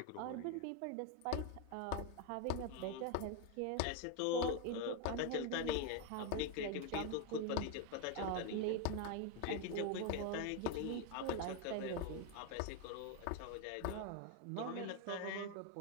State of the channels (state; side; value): different; both; correlation 0.02